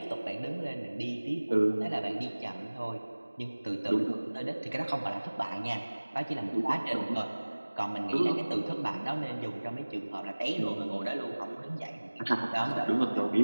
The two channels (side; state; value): both; inverted; correlation -1.00